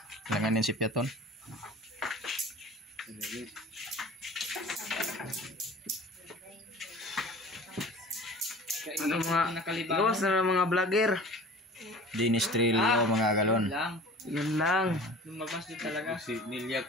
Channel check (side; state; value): both; normal; correlation 0.42